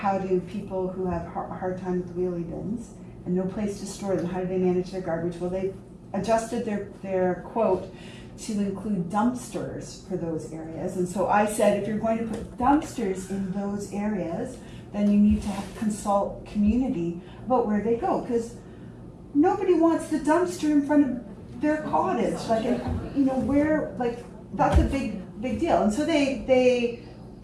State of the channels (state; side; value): identical; both; correlation 1.00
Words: do people who have a hard time with wheelie bins and no place to store them, how do they manage their garbage? Well, they adjusted their quote to include dumpsters for those areas. And so I said, if you're going to put dumpsters in those areas, then you need to consult community about where they go, because nobody wants the dumpster in front of their cottage, like, you know, where, like, that's a big deal. And so they